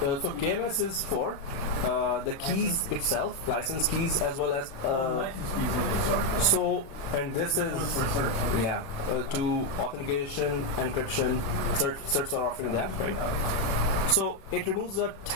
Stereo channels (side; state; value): right; late; 36 ms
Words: So KMS is for the keys itself, license keys, as well as License keys also, sorry. so, and this is For search. to authentication, encryption, certs are offering that, right? So it removes the